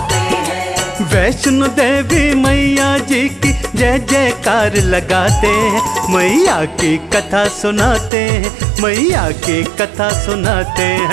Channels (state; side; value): drops out; left; at 8.1 s